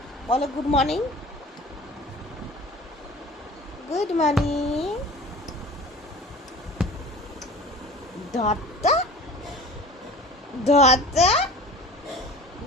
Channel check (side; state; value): both; normal; correlation 0.41